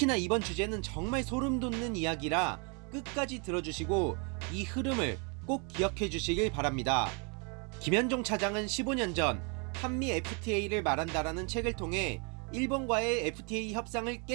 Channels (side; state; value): left; quieter; 34.7 dB